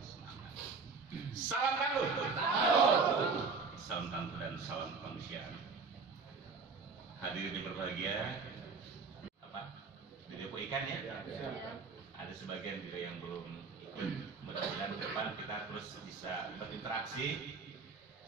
semangat. Salam tangguh, salam tangguh dan salam kemanusiaan. Hadirin yang berbahagia, di depo ikan ya? Ada sebagian juga yang belum ikut. Mudah-mudahan ke depan kita terus bisa berinteraksi.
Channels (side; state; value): left; quieter; 4.6 dB